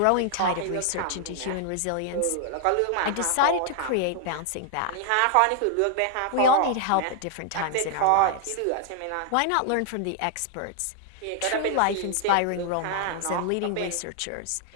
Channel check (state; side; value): different; both; correlation 0.00